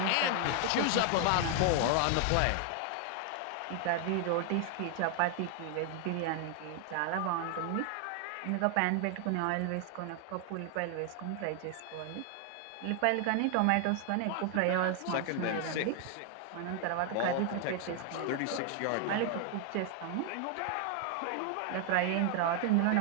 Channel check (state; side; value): different; both; correlation 0.00